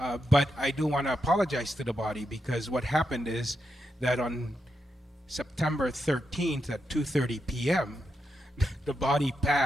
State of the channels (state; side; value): normal; both; correlation 0.84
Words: But I do want to apologize to the body, because what happened is that on September 13th at 2:30 p.m., the body